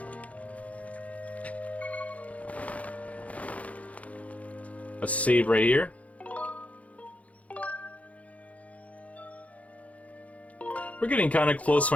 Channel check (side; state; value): right; late; 0.067 ms